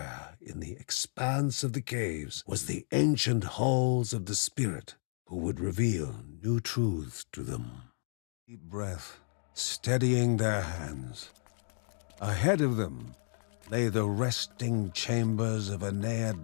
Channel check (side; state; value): right; silent; 56 dB below the other